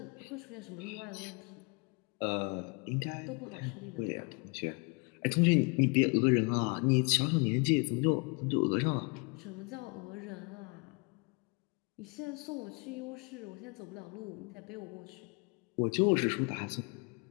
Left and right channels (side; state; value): right; quieter; 31.5 dB